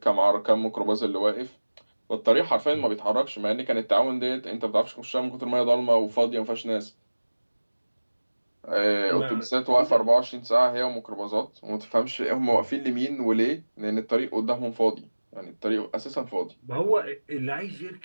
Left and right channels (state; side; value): inverted; both; correlation -1.00